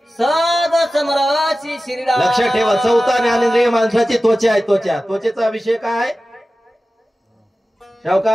सद समराशी श्रीराम. लक्षात ठेवा 4था ज्ञानेंद्रिय माणसाची त्वचा आहे. त्वचेचा विषय काय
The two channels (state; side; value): normal; both; correlation 0.95